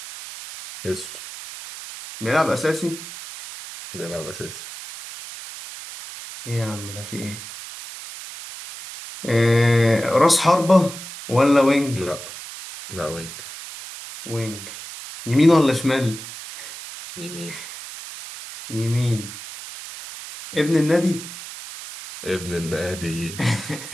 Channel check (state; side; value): noise; right; hiss, 12 dB below the sound